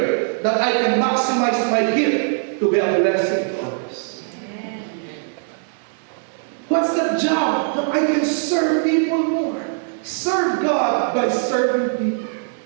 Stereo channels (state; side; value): silent; left; 65 dB below the other